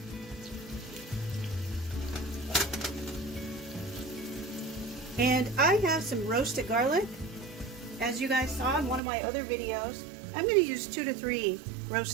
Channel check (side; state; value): left; drops out; at 9.0 s